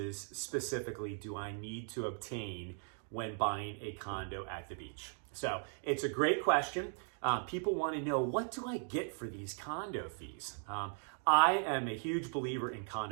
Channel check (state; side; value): silent; left; 52 dB below the other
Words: specifically do I need to obtain when buying a condo at the beach? So it's a great question. People want to know, what do I get for these condo fees? I am a huge believer in